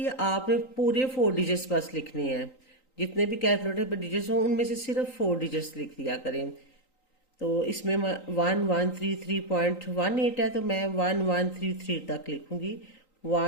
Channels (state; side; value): late; right; 3.9 ms